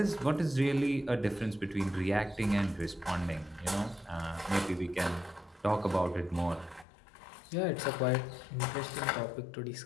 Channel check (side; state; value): right; drops out; at 6.9 s